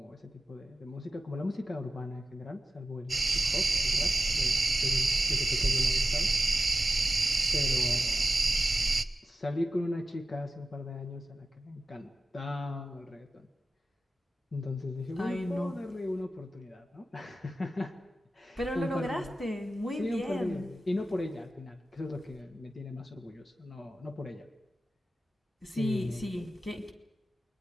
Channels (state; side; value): normal; both; correlation 0.93